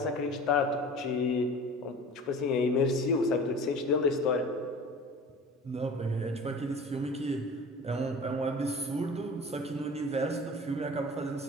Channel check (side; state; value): both; normal; correlation 0.39